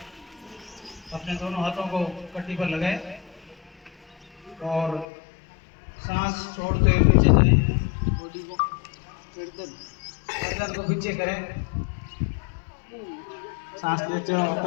अपने दोनों हाथों को कट्टी पर लगाए और सांस छोड़ते हुए पीछे जाएं, बॉडी को गर्दन को पीछे करें, सांस लेते हुए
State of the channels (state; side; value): drops out; right; at 5.1 s